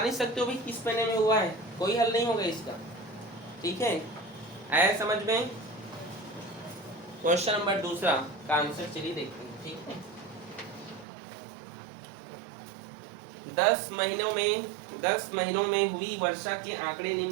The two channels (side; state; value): left; drops out; at 11.1 s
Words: सकते हो भाई किस महीने में हुआ है, कोई हल नहीं होगा इसका, ठीक है। आया समझ में? क्वेश्चन नंबर 2 का आंसर चलिए देखते हैं, ठीक है। 10 महीनों में हुई वर्षा के आंकड़े